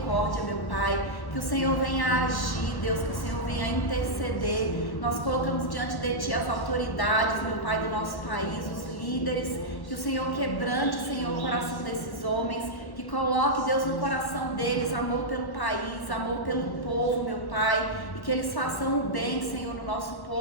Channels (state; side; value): late; right; 1.1 ms